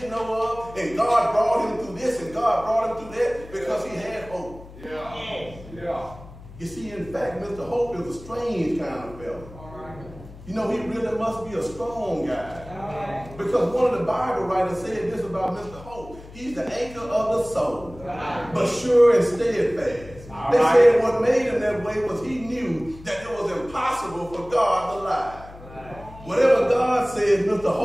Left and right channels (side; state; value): left; noise; hum, 18 dB below the sound